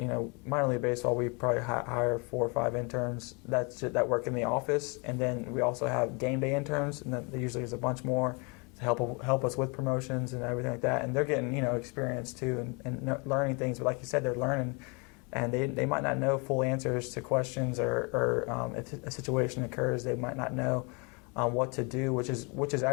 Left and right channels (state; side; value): quieter; right; 32.1 dB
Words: minor league baseball, we probably hire 4 or 5 interns that work in the office, and then we also have game day interns, and then there usually is a bunch more to help us with promotions and everything like that. And they're getting experience too and learning things. But like you said, they're learning, and they might not know full answers to questions, or if a situation occurs, they might not know what to do, which is